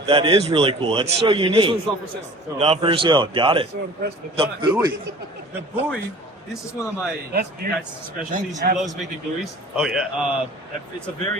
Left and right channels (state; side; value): normal; both; correlation 0.44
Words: that is really cool. That's so this unique. one's not for sale. So, Not for sale. Got it. The buoy. the buoy, this is one of my guys' specialties. He loves making buoys. Oh, yeah. It's a